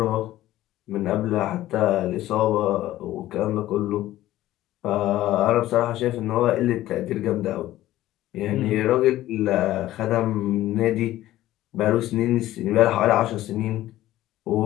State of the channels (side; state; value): right; quieter; 14.8 dB